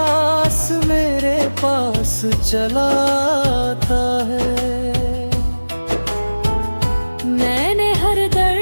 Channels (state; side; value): inverted; both; correlation -1.00